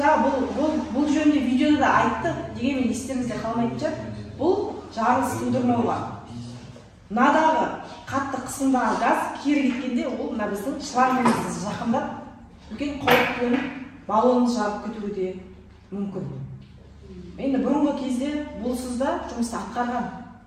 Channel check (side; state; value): both; identical; correlation 1.00